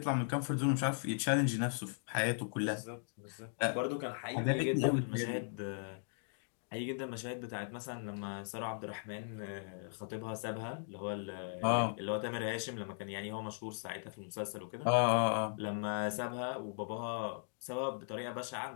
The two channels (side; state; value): right; silent; digital silence